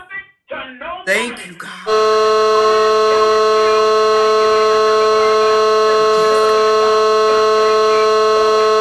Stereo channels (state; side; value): identical; both; correlation 1.00